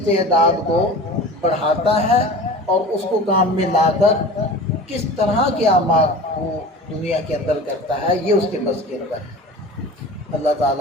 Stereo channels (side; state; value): both; normal; correlation 0.37